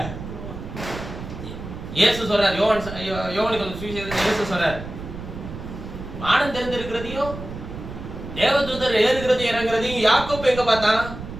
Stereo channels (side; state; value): right; noise; rumble, 10 dB below the sound